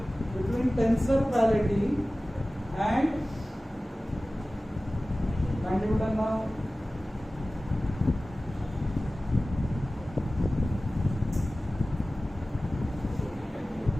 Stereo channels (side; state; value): both; normal; correlation 0.97